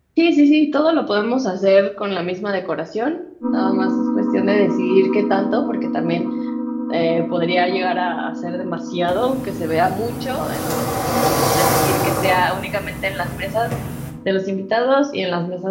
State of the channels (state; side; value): identical; both; correlation 1.00